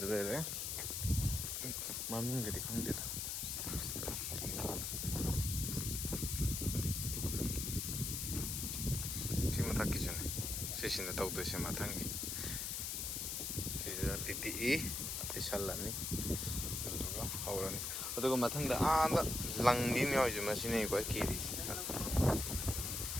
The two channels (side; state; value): left; noise; hiss, 2 dB below the sound